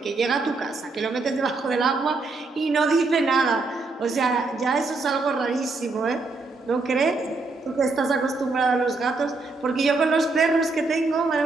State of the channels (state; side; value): quieter; left; 3.6 dB